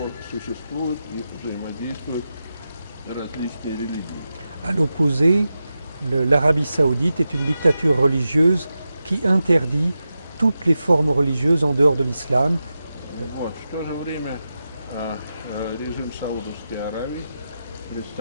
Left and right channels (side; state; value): both; inverted; correlation -0.90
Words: существуют и взаимодействуют различные религии. À l'opposé, l'Arabie saoudite est une dictature religieuse qui interdit toutes les formes religieuses en dehors de l'islam. Вот. В то же время режим Саудовской Аравии